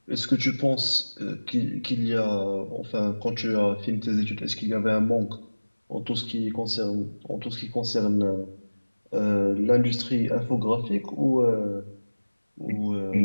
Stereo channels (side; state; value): both; inverted; correlation -1.00